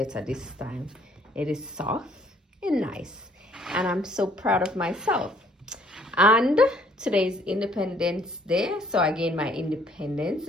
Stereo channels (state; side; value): normal; both; correlation 0.62